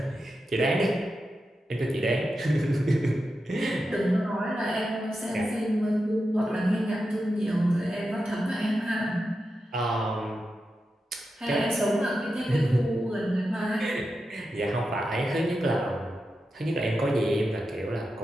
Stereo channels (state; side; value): normal; both; correlation 0.90